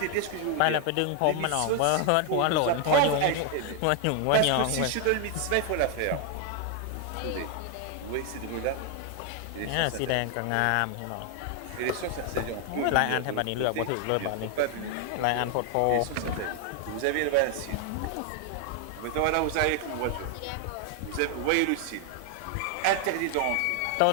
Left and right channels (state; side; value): different; both; correlation 0.01